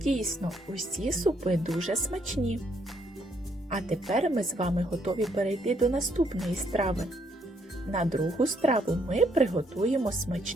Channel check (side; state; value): both; normal; correlation 0.71